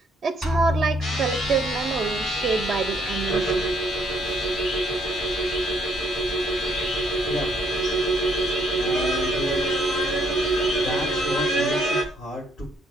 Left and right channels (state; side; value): normal; both; correlation 0.69